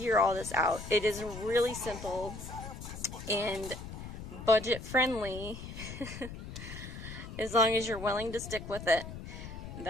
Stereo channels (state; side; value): noise; left; rumble, 10 dB below the sound